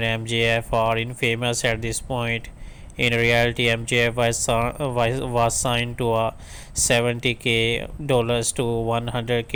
and MJF are infamous at this point. In reality, MJF was signed to a $70K to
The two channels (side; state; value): both; identical; correlation 1.00